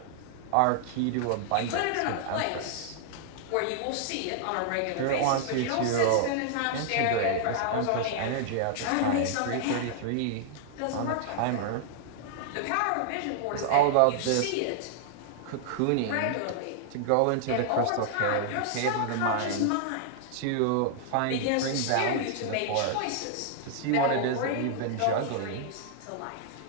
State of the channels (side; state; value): both; different; correlation -0.01